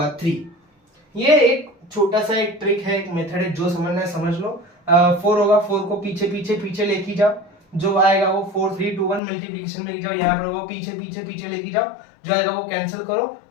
3, ये एक छोटा सा एक ट्रिक है, एक मेथड है, जो समझना है समझ लो। 4 होगा, 4 को पीछे पीछे पीछे लेके जाओ, जो आएगा वो 4 3 2 1 मल्टीप्लीकेशन में लेके जाओ, यहाँ पर वो पीछे पीछे पीछे लेके जाओ, जो आएगा वो कैंसिल करो,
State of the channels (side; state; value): right; drops out; at 9.2 s